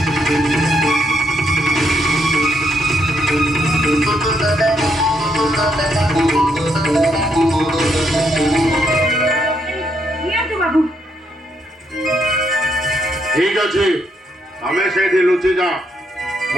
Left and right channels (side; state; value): both; normal; correlation 0.75